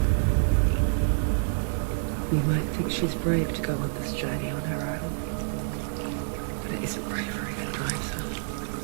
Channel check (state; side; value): silent; left; 60 dB below the other